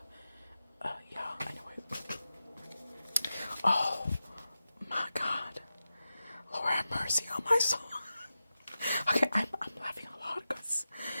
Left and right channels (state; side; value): inverted; both; correlation -0.92